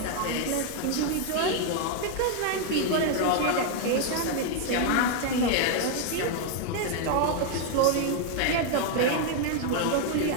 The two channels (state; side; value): different; both; correlation 0.00